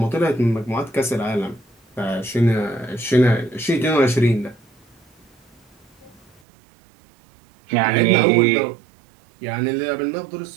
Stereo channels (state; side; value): drops out; left; at 6.4 s